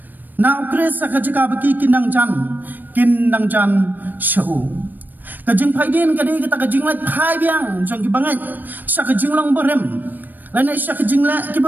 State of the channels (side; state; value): left; late; 0.089 ms